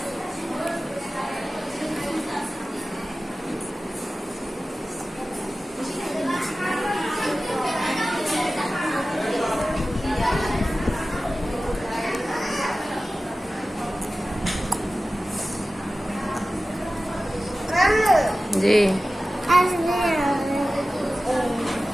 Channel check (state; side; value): normal; both; correlation 0.95